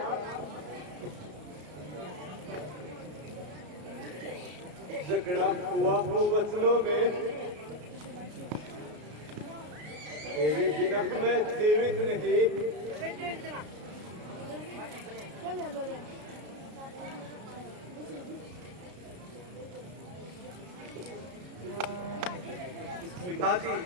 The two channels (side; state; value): left; late; 33 ms